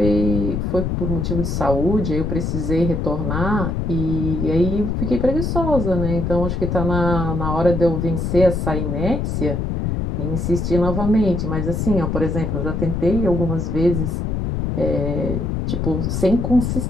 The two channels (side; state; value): left; noise; rumble, 1 dB below the sound